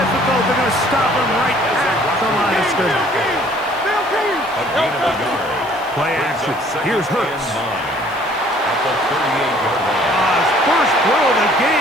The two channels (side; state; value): right; noise; hiss, 25 dB below the sound